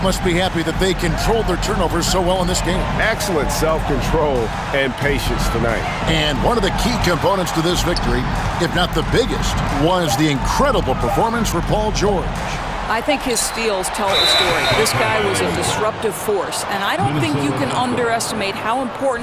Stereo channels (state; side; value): identical; both; correlation 1.00